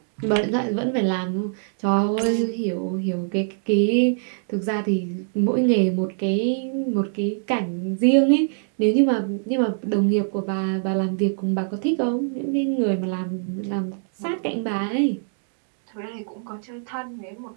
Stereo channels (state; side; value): silent; left; digital silence